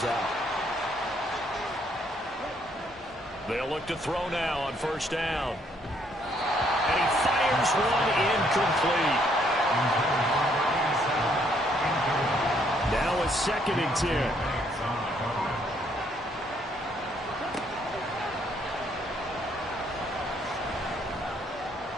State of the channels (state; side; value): normal; both; correlation 0.69